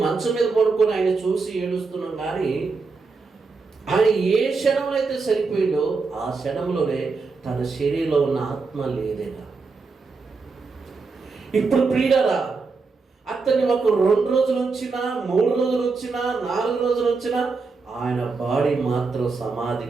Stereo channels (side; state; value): left; quieter; 4.4 dB